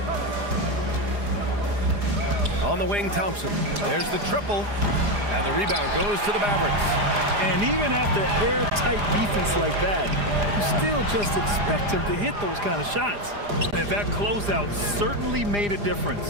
On the wing, Thompson. There's the triple. And the rebound goes to the Mavericks. And even after airtight defense like that, you still just expect him to hit those kind of shots. And that closeout certainly made a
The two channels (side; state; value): left; late; 4.9 ms